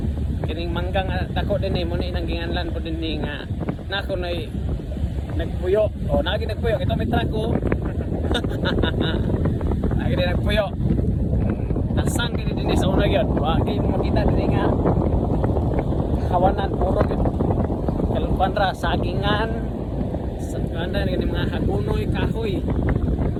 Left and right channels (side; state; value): both; identical; correlation 1.00